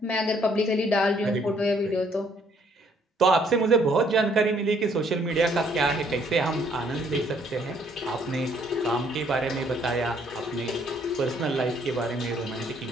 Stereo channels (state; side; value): normal; both; correlation 0.65